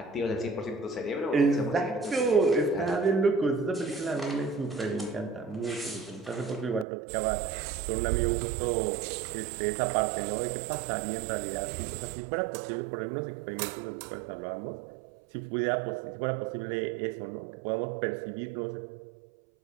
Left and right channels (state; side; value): drops out; left; at 6.9 s